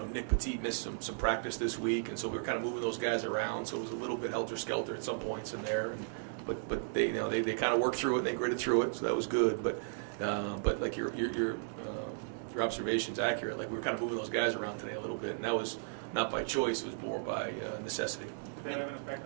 Nick Petit missed some practice this week, and so we were kind of moving those guys around. So it was a little bit helter-skelter at some points in there. But they kind of worked through it and they gritted through it, so that was good. But like your observation's accurate. Like we were kind of moving those guys around today a little bit, and that was not by choice. It was more by necessity. Did that have an effect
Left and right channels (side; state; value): left; silent; digital silence